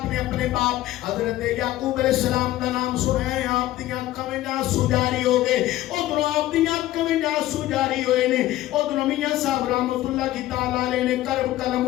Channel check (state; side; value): quieter; right; 15.1 dB